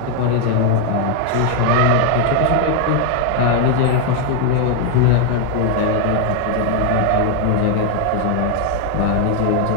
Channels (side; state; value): both; different; correlation 0.00